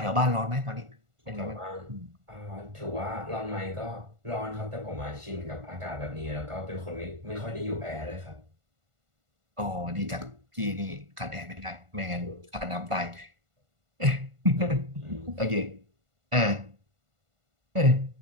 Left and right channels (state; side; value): late; left; 1.5 ms